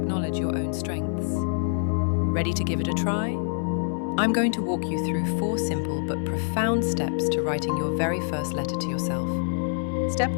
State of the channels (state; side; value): silent; right; digital silence